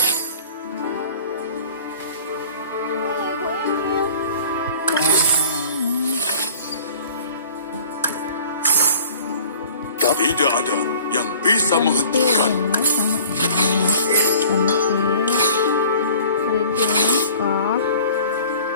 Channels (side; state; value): both; inverted; correlation -0.48